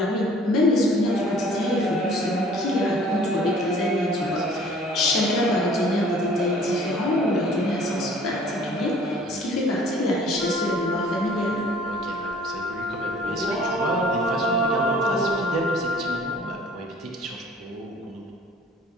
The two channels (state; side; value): normal; both; correlation 0.52